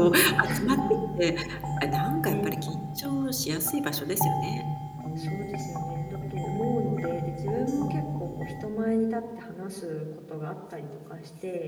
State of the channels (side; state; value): both; identical; correlation 1.00